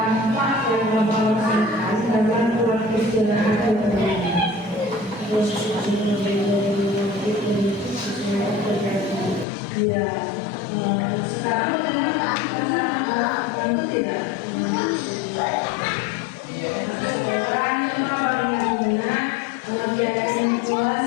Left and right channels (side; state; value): right; drops out; at 9.5 s